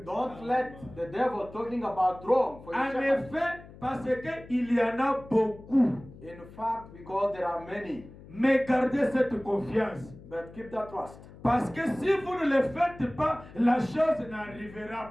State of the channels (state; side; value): noise; left; hum, 19 dB below the sound